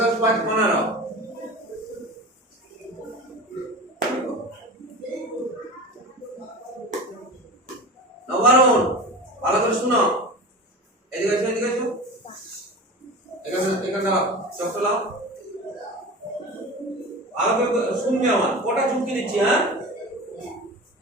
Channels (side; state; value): both; normal; correlation 0.32